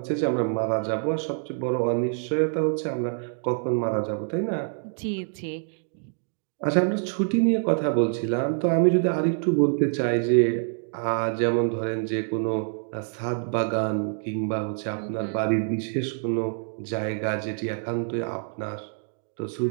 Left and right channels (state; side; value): silent; left; digital silence